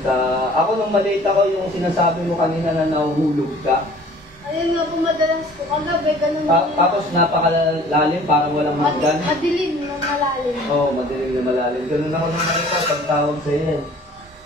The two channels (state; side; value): normal; both; correlation 0.50